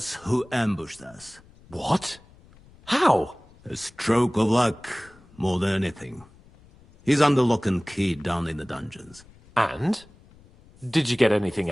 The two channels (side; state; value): left; noise; rumble, 26 dB below the sound